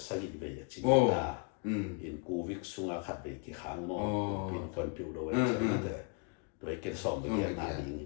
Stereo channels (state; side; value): quieter; right; 34.6 dB